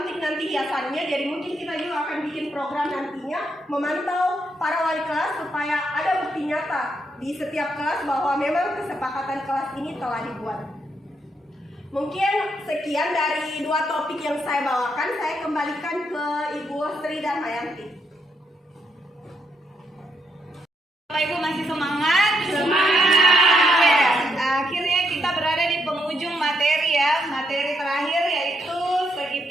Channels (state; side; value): normal; both; correlation 0.77